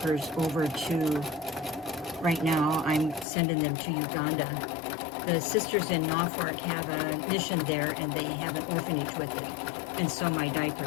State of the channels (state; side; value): drops out; right; at 3.2 s